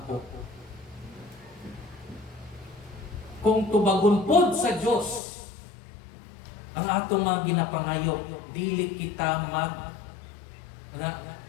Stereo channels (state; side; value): drops out; right; at 5.2 s